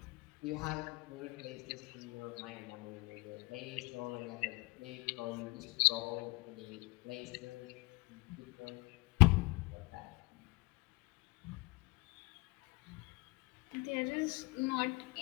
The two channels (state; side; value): quieter; right; 24.7 dB